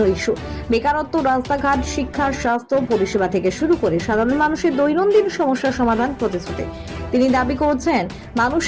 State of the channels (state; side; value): identical; both; correlation 1.00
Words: ইস্যু। বেকারত্ব, রাস্তাঘাট, শিক্ষা, স্বাস্থ্য পরিষেবা থেকে শুরু করে সাধারণ মানুষের দৈনন্দিন সমস্যার সমাধান প্রতিশ্রুতি। তিনি দাবি করছেন,